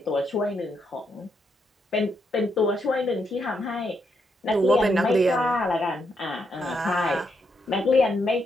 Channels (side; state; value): both; normal; correlation 0.79